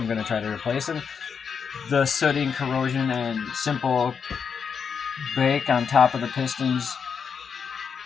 going to try to replace them. The sooting, corrosion, and simple bake on top of the pistons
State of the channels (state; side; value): quieter; right; 6.4 dB